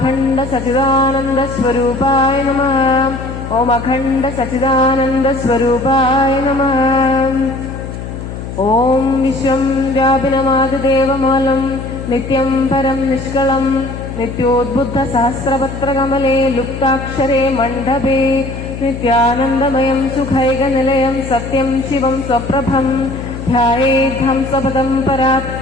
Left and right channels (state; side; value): noise; left; hum, 8 dB below the sound